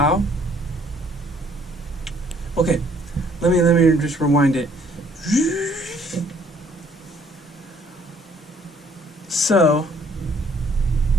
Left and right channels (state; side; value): normal; both; correlation 0.62